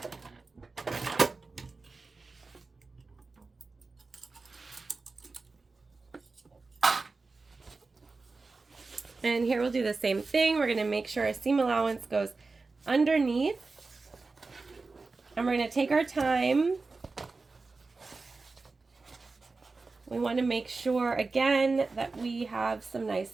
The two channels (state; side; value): quieter; left; 3.9 dB